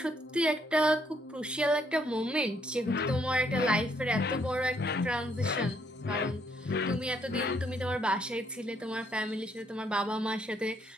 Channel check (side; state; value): both; normal; correlation 0.70